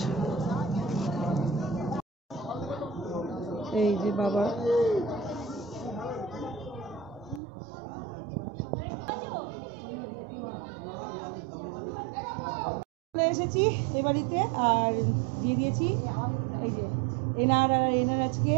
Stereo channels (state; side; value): drops out; left; at 7.4 s